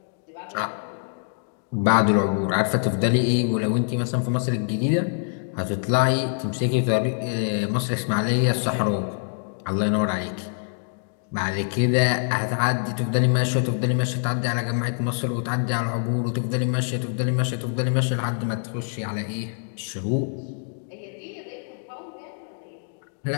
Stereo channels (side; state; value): right; silent; digital silence